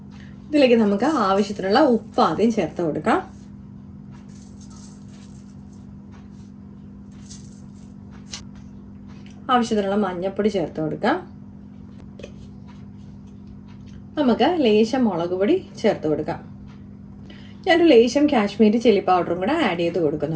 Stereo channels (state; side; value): identical; both; correlation 1.00